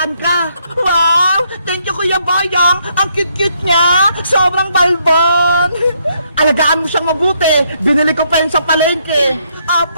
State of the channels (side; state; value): both; inverted; correlation -0.73